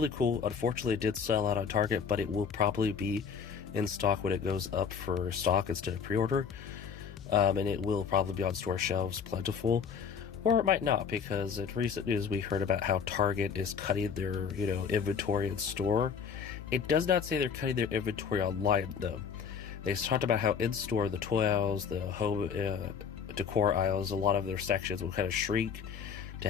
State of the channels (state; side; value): quieter; right; 6.7 dB